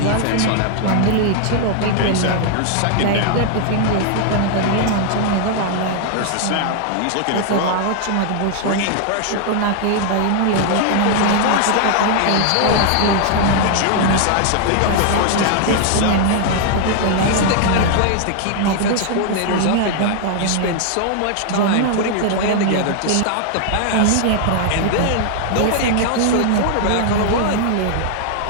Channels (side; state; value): both; different; correlation 0.00